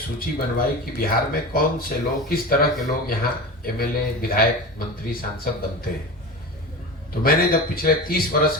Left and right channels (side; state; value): both; normal; correlation 0.28